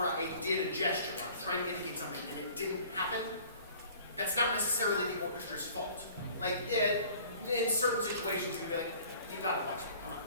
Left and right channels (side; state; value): both; inverted; correlation -0.50